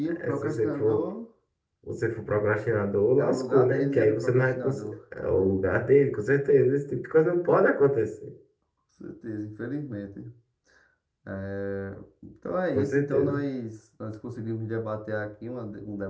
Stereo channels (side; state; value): both; identical; correlation 1.00